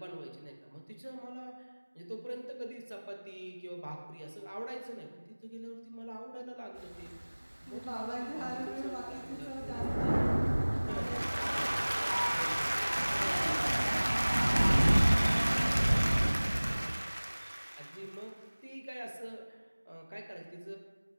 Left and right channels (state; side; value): inverted; both; correlation -1.00